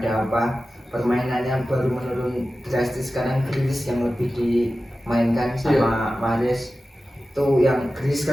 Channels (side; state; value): both; normal; correlation 0.94